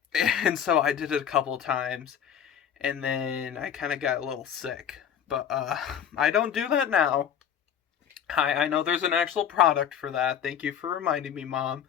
And so I did it a couple of times. And then I kind of got a little sick. But I don't do that now. I know there's an actual product for that. Thank you for reminding me, Mom.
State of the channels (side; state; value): right; quieter; 8.7 dB